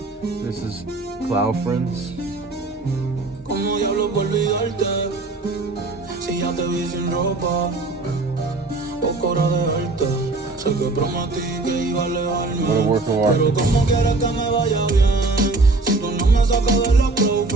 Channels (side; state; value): left; quieter; 3.3 dB